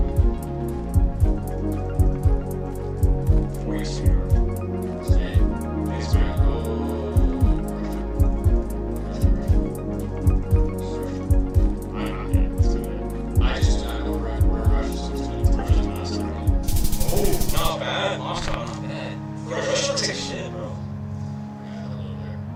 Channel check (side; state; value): both; identical; correlation 1.00